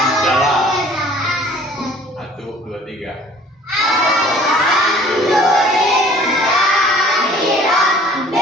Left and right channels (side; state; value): both; normal; correlation 0.52